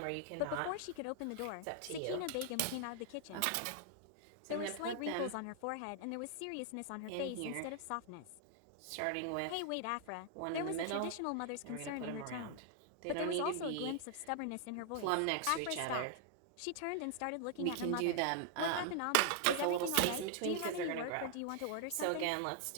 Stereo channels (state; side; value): different; both; correlation 0.00